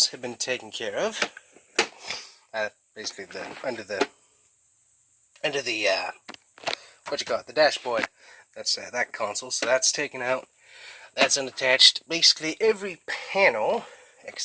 have been taken care of. Basically under the what you call it, the dashboard. That's that console, so that's taken out. That's unattached. Basically every panel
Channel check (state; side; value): identical; both; correlation 1.00